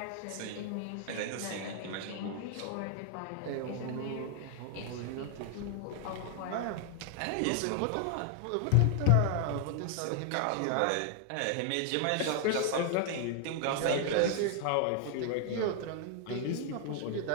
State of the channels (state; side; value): different; both; correlation 0.00